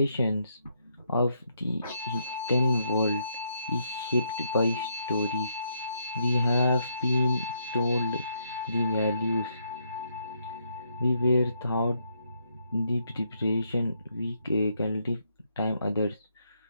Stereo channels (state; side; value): inverted; both; correlation -0.75